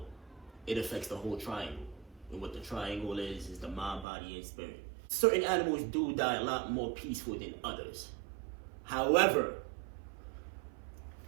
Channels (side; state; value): left; drops out; at 4.0 s